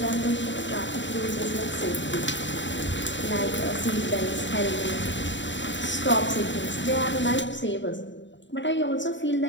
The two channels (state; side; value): late; right; 0.54 ms